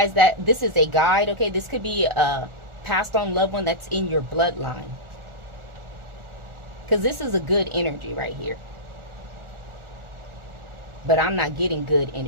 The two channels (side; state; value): left; late; 1.4 ms